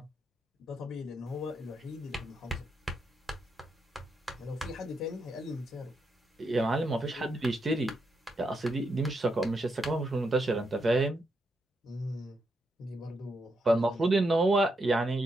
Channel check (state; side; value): normal; both; correlation 0.81